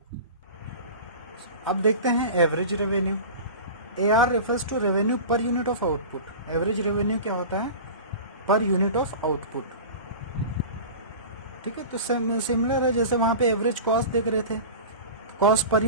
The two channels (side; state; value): both; inverted; correlation -0.34